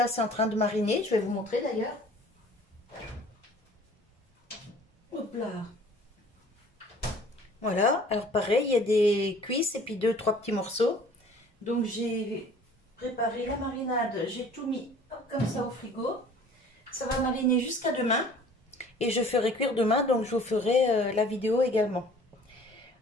c'est en train de mariner. Je vais vous montrer d'ailleurs. Hop là. Voilà, alors pareil, il y a des cuisses et puis 2-3 petits morceaux. Donc j'ai préparé la marinade, j'ai tout mis hop, comme ça au frigo. Ça va mariner jusqu'à demain et je ferai cuire demain, donc je vous ferai la vidéo également.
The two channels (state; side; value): normal; both; correlation 0.50